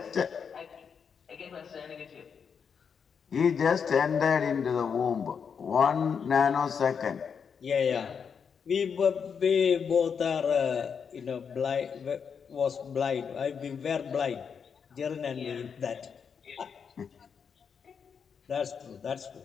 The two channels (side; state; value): right; quieter; 6.6 dB